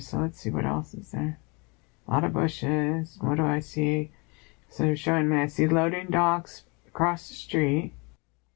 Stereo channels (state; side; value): quieter; right; 29.8 dB